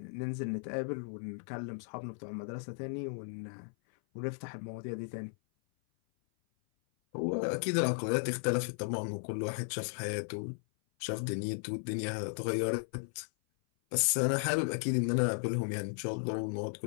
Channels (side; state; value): right; silent; 54 dB below the other